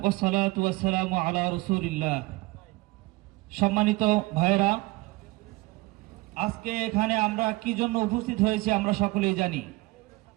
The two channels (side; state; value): left; quieter; 22.4 dB